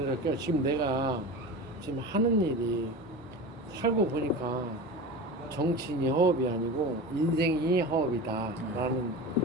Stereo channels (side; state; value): both; normal; correlation 0.29